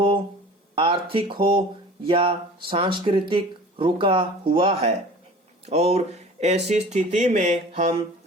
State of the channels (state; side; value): normal; both; correlation 0.42